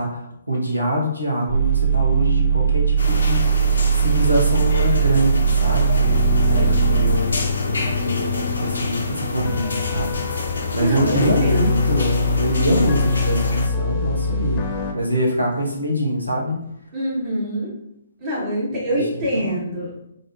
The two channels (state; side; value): inverted; both; correlation -0.66